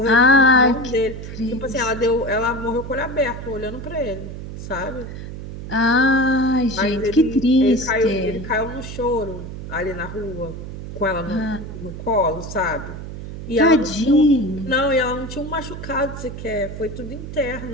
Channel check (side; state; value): right; noise; hum, 9 dB below the sound